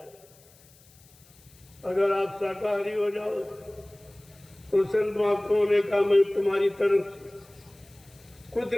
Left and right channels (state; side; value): noise; left; hiss, 27 dB below the sound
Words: है। अगर आप शाकाहारी हो जाओ तो संत महात्माओं ने कहा मैं तुम्हारी तरफ